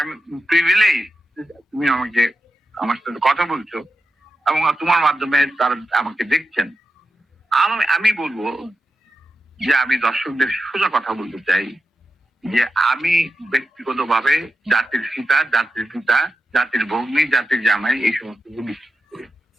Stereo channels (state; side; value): normal; both; correlation 0.89